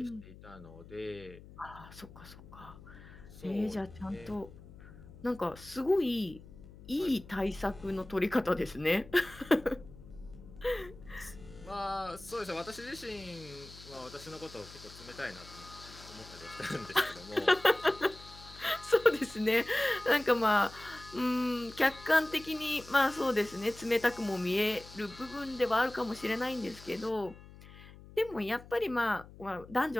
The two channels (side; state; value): left; noise; hum, 18 dB below the sound